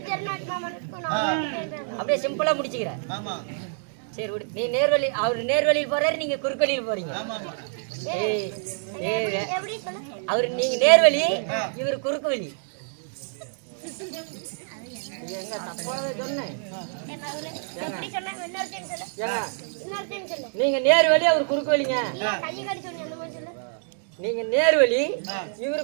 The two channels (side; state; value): left; silent; digital silence